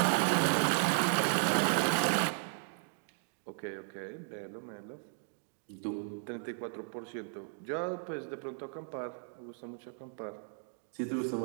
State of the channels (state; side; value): silent; left; 54 dB below the other